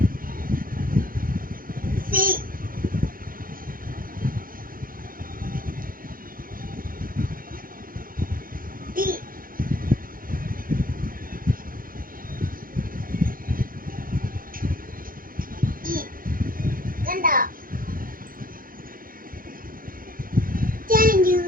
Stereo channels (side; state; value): left; late; 0.41 ms